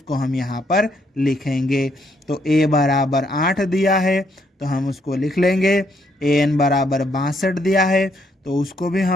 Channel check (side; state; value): both; normal; correlation 0.73